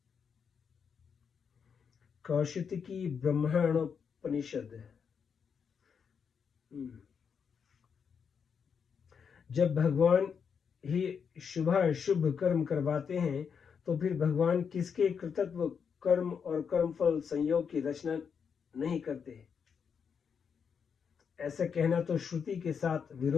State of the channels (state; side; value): quieter; right; 6.6 dB